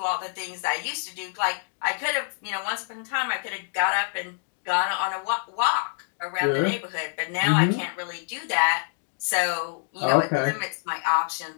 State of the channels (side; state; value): right; silent; 61 dB below the other